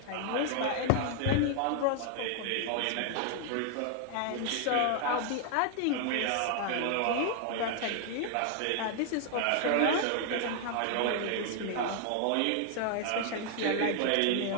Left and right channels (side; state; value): both; different; correlation 0.00